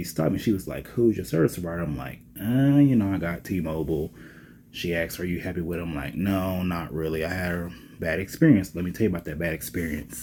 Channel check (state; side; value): identical; both; correlation 1.00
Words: stopped me. She was like, "Who's your service provider?" I'm like, I got T-Mobile." She asked, "Are you happy with it?" I'm like, "No, not really. I had a bad experience." Let me tell you about that bad experience.